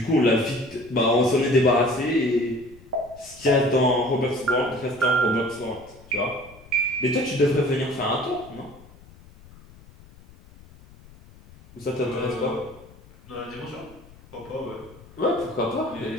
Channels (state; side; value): noise; left; rumble, 23 dB below the sound